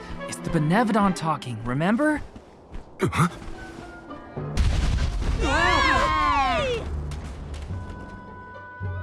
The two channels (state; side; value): identical; both; correlation 1.00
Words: It's the Benevodon talking, remember? Huh?